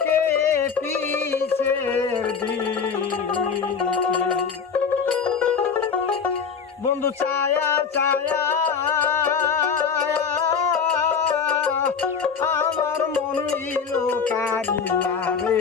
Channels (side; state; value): right; quieter; 6.1 dB